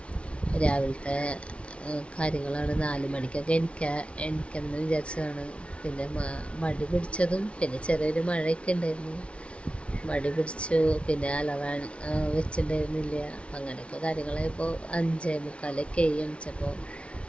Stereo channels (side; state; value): right; late; 0.060 ms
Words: രാവിലത്തെ കാര്യങ്ങളാണ്. 4 മണിക്കൊക്കെ എനിക്കെന്ന് വിചാരിച്ചതാണ്. പിന്നെ മടി പിടിച്ചതും പിന്നെ ചെറിയൊരു മഴയൊക്കെ ഉണ്ടായിരുന്നു. മടി പിടിച്ചു. പിന്നെ അലറാൻ വെച്ചിട്ടുണ്ടായിരുന്നില്ല. അങ്ങനെയൊക്കെ കാര്യങ്ങളായപ്പോൾ 5:45 എണിച്ചപ്പോൾ